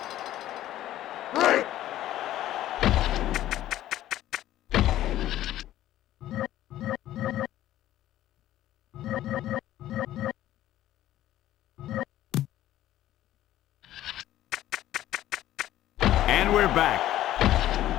And we're back.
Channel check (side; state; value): right; quieter; 13.5 dB